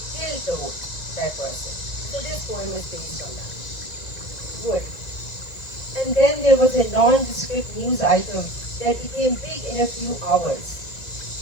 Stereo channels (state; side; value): late; right; 1.9 ms